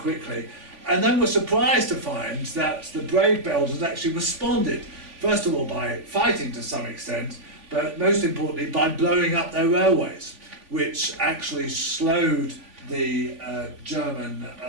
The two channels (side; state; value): left; late; 3.5 ms